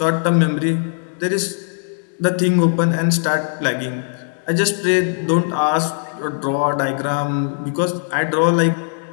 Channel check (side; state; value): right; silent; 63 dB below the other